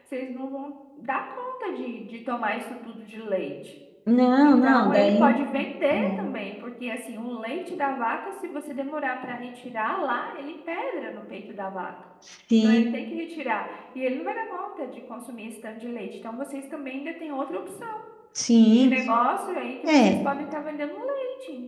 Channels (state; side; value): identical; both; correlation 1.00